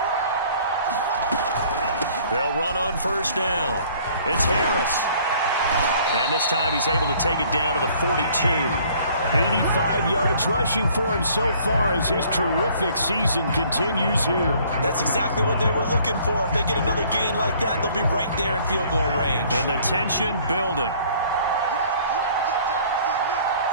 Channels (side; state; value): both; inverted; correlation -0.57